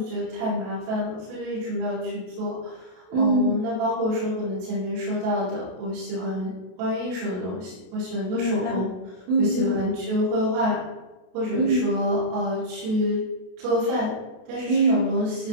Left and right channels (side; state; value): left; late; 32 ms